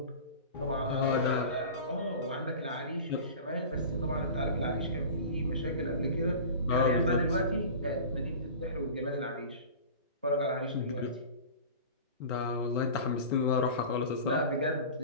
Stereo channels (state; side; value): inverted; both; correlation -0.36